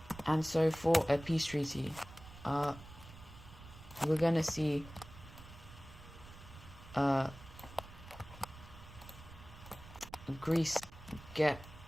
And so for a peace treaty, we're going to see Greece get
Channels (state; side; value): noise; right; rumble, 17 dB below the sound